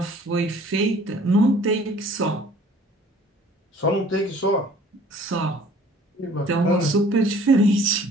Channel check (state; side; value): normal; both; correlation 0.53